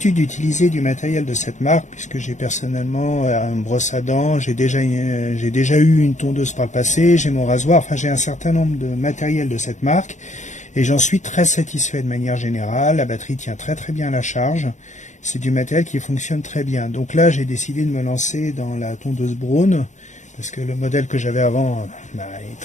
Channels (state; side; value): late; right; 0.35 ms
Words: d'utiliser du matériel de cette marque puisque j'ai personnellement une brosse à dents, j'ai déjà eu une tondeuse par le passé, j'ai mon rasoir, enfin j'ai un certain nombre de matériel de cette marque et j'en suis très satisfait de manière générale. La batterie tient très très bien à la charge. C'est du matériel qui fonctionne très bien. Donc là, j'ai décidé de me lancer dans la tondeuse Braun, parce que le modèle que j'avais avant est